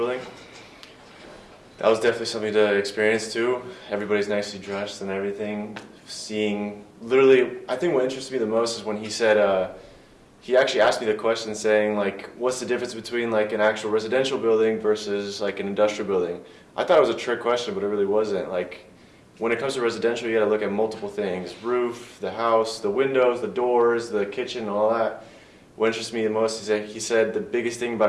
That was definitely something to experience too. Everybody's nicely dressed and everything. Seeing, literally, I think what interested me the most is when he said, he actually asked me the question saying like, what's the difference between like an actual residential building versus like an industrial building? I thought it was a trick question, but it really wasn't. Like, when it comes to residential, you gotta look at multiple things. Roof, the house, the windows, the doors, the kitchen, all that. What interests me the most is he said the biggest thing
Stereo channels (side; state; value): both; identical; correlation 1.00